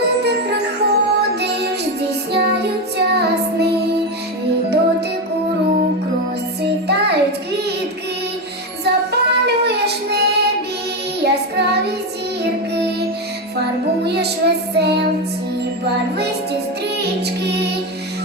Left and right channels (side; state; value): both; normal; correlation 0.13